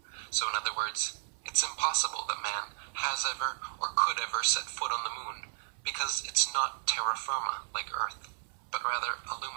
So in other words, it's impossible that man has ever or could ever set foot on the moon, because it's not terra firma like Earth, but rather a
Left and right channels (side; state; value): left; silent; 55 dB below the other